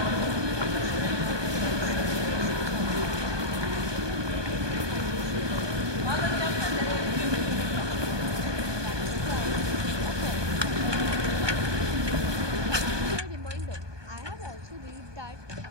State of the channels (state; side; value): late; left; 1.2 ms